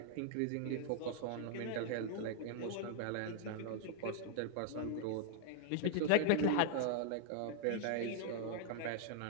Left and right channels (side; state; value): both; different; correlation -0.01